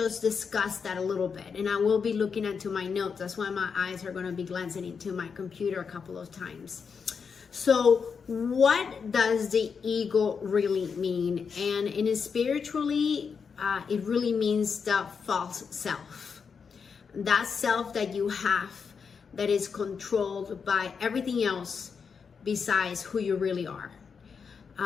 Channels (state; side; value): quieter; right; 6.0 dB